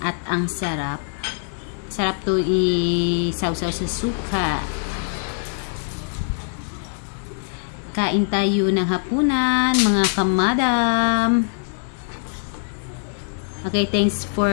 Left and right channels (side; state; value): right; silent; digital silence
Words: ang sarap. Sarap to i-sausaw sa suka. Kain tayo ng hapunan, mga kamadam. Okay, thanks